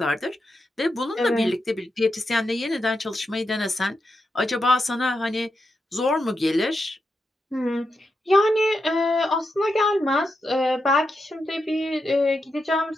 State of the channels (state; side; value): normal; both; correlation 0.86